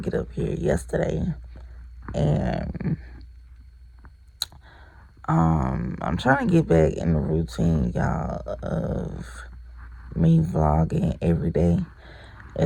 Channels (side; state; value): both; identical; correlation 1.00